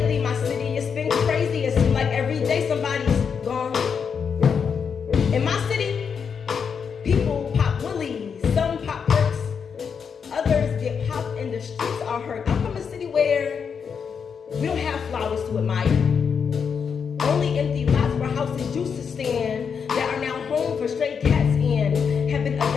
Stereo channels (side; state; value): right; quieter; 6.5 dB